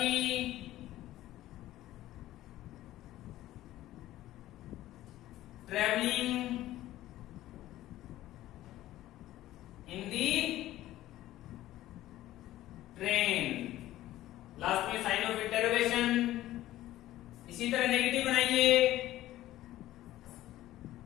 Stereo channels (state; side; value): quieter; right; 14.8 dB